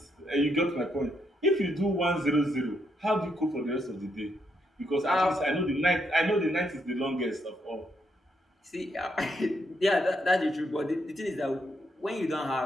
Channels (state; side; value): normal; both; correlation 0.78